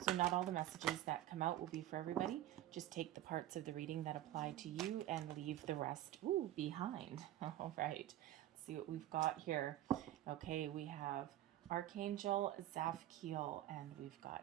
not all the messages that come out will be for everybody. Just take the parts of the reading that apply to you and leave the rest behind. All right. See what we've got here. Okay, we have Archangel Zafkiel, and we've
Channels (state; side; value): quieter; left; 13.4 dB